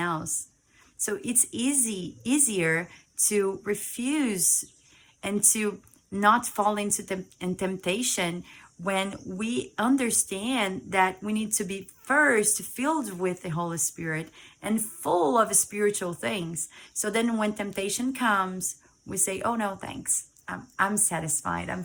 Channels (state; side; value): identical; both; correlation 1.00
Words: So it's easier to refuse and to not fall into temptation when we understand that we need to be first filled with the Holy Spirit and full of spiritual things. So then when temptation comes, we say, oh no, thanks. I'm satisfied. I'm